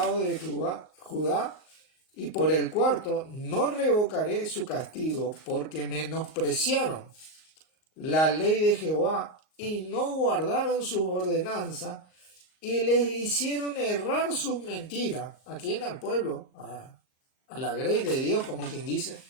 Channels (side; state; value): right; late; 38 ms